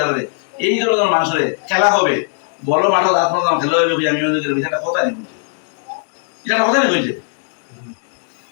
দাঁড়ালে এই ধরনের মানুষের খেলা হবে, বড় মাঠে দাঁত পড়লাম খেলা হবে, আমি এটা কথা নেই, এটা কথা নেই হয়েছে।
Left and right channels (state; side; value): silent; right; digital silence